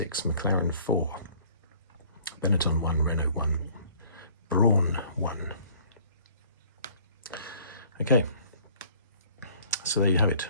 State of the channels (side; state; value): both; inverted; correlation -0.55